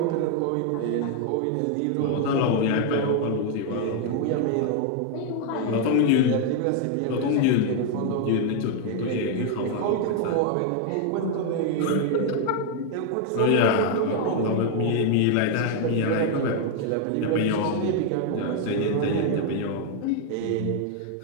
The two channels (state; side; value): different; both; correlation 0.00